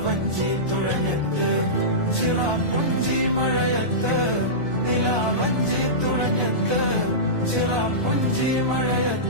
തുഴഞ്ഞത്ത് ചിറാപ്പുഞ്ചി മഴയത്ത് നിലാവഞ്ചി തുഴഞ്ഞത്ത് ചിറാപ്പുഞ്ചി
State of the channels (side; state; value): left; late; 1.2 ms